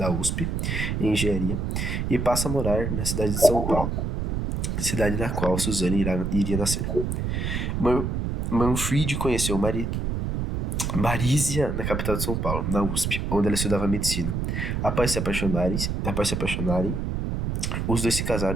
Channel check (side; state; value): right; noise; rumble, 1 dB below the sound